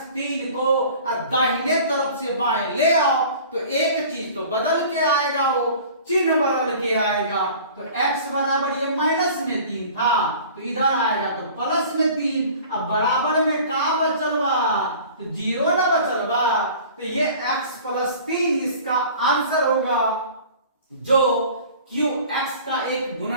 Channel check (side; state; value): both; inverted; correlation -0.44